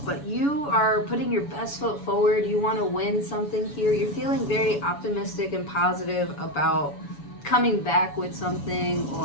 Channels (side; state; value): right; late; 7.1 ms